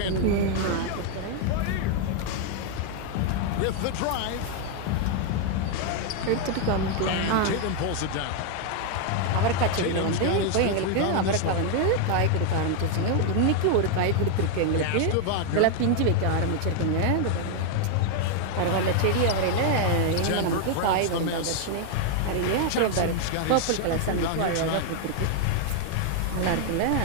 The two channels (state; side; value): different; both; correlation 0.00